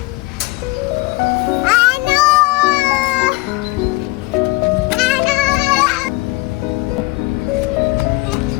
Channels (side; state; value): right; quieter; 21.9 dB